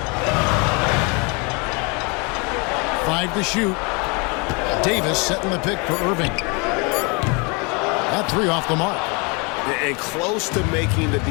5 to shoot. Davis setting the pick for Irving. That 3 off the mark. And close to making the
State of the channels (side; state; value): right; quieter; 30.9 dB